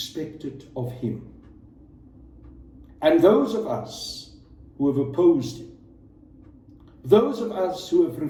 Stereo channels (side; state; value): both; identical; correlation 1.00